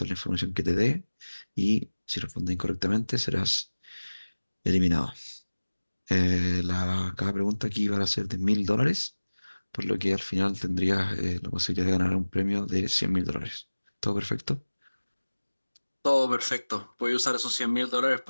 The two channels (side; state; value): both; inverted; correlation -1.00